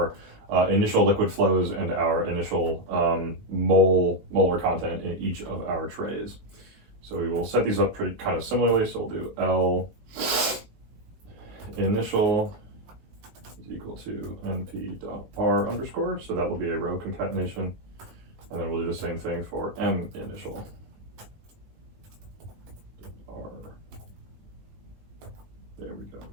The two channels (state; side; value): late; left; 19 ms